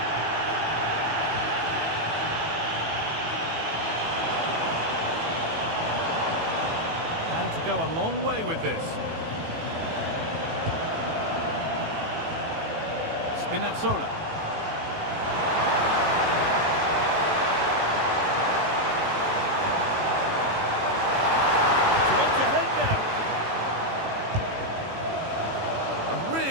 Had to go a long way with this. Spinazzola.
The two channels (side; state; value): left; late; 18 ms